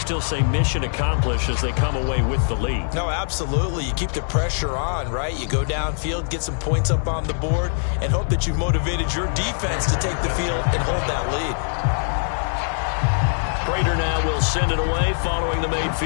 say mission accomplished as they come away with the lead. No, absolutely. You keep the pressure on, right? You go downfield, get some points up on the board, and hope that you've motivated your defense to take the field and hold that lead. Prater now will send it away following the made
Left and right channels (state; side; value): silent; right; 56 dB below the other